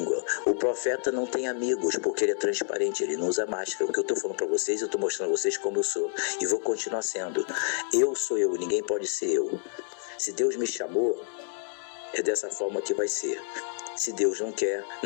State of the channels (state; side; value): silent; right; 59 dB below the other